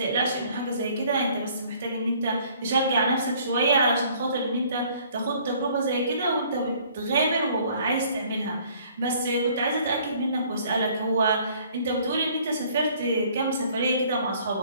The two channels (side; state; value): both; inverted; correlation -0.58